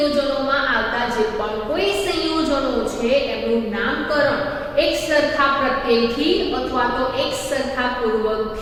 આવતા જે પણ કોઈ સંયોજનો છે એનું નામકરણ એક સરખા પ્રત્યયથી અથવા તો એક સરખા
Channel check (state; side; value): identical; both; correlation 1.00